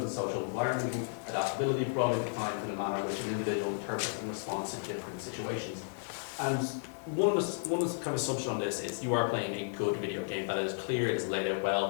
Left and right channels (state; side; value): silent; right; digital silence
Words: and social environment, adaptability, broadly defined in a manner which an individual interprets in response to different situations. And one kind of assumption on this is you are playing a good video game that is clear, it is laid out